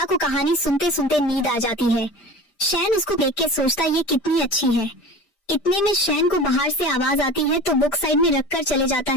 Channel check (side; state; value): right; late; 5.0 ms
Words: को कहानी सुनते सुनते नींद आ जाती है। शैन उसको देख के सोचता ये कितनी अच्छी है। इतने में शैन को बाहर से आवाज आती है तो बुक साइड में रखकर चले जाता